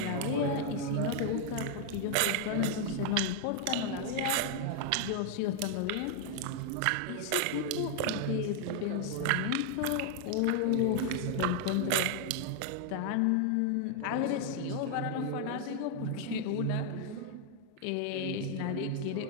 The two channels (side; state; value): both; different; correlation 0.00